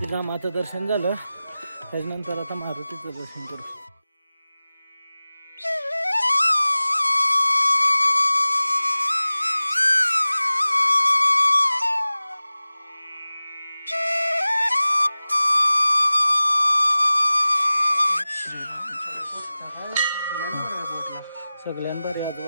रामाचं दर्शन झालं, त्याच्यानंतर आता मारुतीचं दर्शन करू। सगळ्यांभारी आज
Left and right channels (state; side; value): inverted; both; correlation -0.97